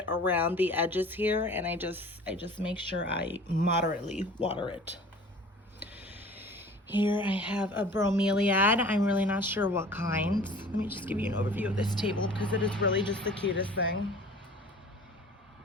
around the edges here, and I just make sure I moderately water it. Here I have a bromeliad. I'm really not sure what kind. Let me just give you an overview of this table because it is really just the cutest thing.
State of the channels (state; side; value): normal; both; correlation 0.45